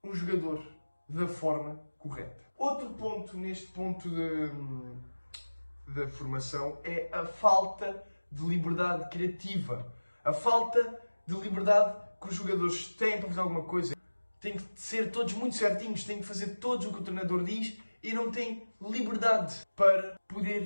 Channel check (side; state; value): both; inverted; correlation -1.00